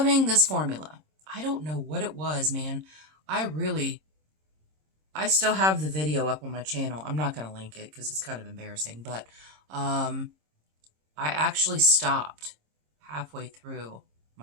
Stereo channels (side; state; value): left; late; 26 ms